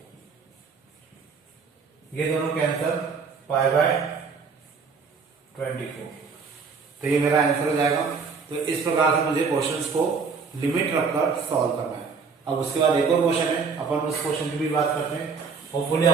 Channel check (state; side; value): quieter; left; 5.2 dB